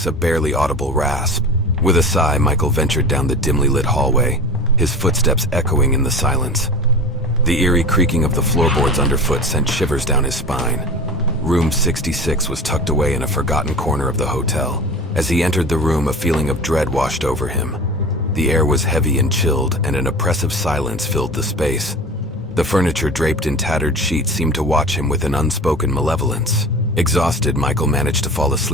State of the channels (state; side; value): normal; both; correlation 0.35